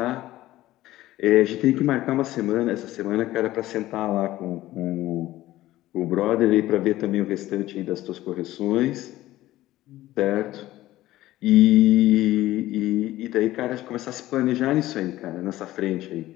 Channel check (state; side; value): quieter; right; 15.8 dB